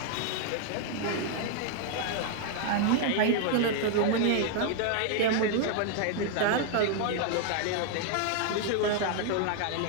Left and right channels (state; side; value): different; both; correlation 0.00